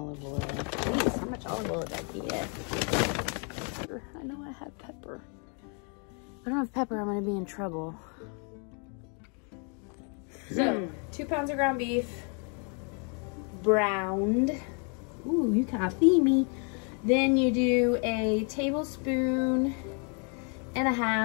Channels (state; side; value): quieter; right; 38.2 dB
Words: oil. Jeez, how much olive oil did I get? I know I have pepper. If I don't have pepper, I'm gonna be in trouble. So, 2 pounds of ground beef, browned. Ooh, you can't feed me. Then you do a tablespoon and a